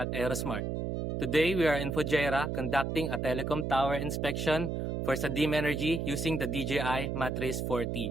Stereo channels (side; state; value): right; noise; hum, 1 dB below the sound